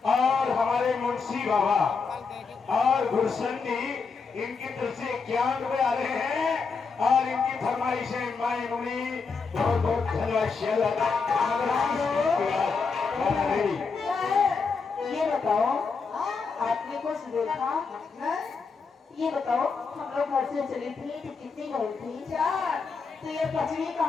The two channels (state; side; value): quieter; right; 5.0 dB